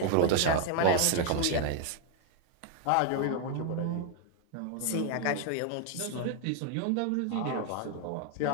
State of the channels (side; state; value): both; different; correlation 0.00